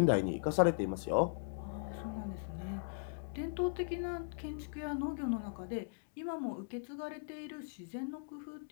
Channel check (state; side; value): silent; right; digital silence